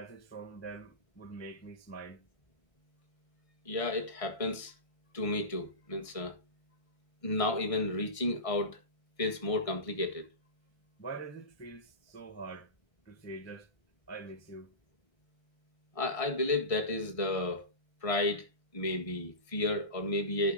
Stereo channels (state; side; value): late; right; 1.6 ms